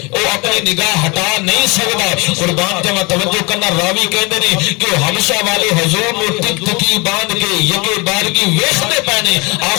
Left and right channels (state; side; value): quieter; right; 27.7 dB